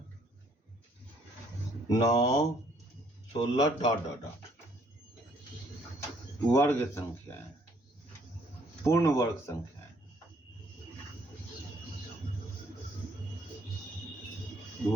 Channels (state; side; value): normal; both; correlation 0.65